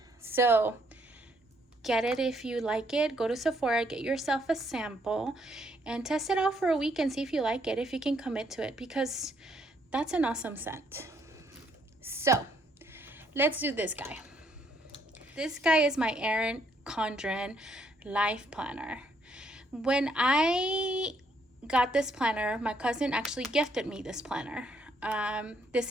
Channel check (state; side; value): normal; both; correlation 0.70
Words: So get it if you like it. Go to Sephora, get yourself a sample, and test it out for a week and see if you like it, if you can commit to it, because that's an awesome scent. So let's do this guy. This guy is my Erin Condren Life Planner. When I got this planner, my cousin actually gifted me this planner. This